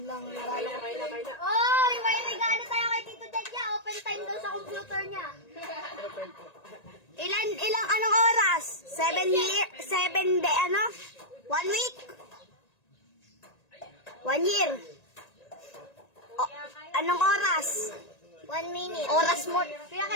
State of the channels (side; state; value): right; late; 1.9 ms